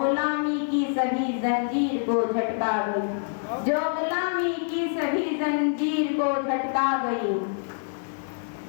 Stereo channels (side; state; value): right; silent; digital silence